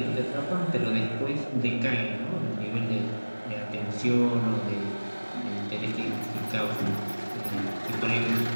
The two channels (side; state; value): both; inverted; correlation -1.00